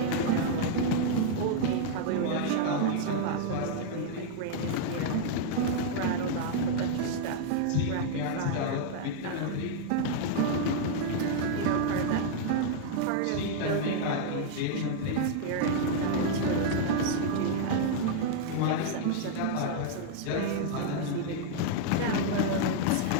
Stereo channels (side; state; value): both; different; correlation -0.01